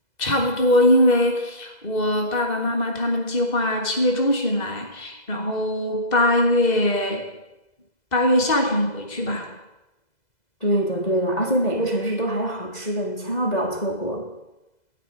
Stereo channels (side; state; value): right; late; 2.0 ms